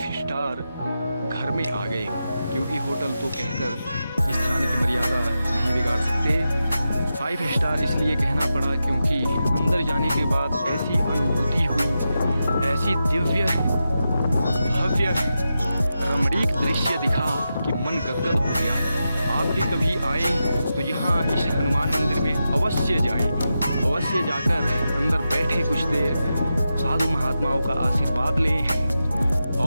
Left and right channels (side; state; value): both; inverted; correlation -0.89